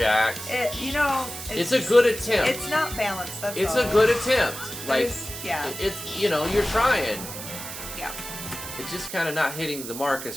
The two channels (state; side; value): noise; right; hiss, 9 dB below the sound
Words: It's a good attempt. It's not balanced, that's It's all. a good attempt. Like, yeah. it's, you know, you're trying. Yeah. It's just kind of not hitting the mark as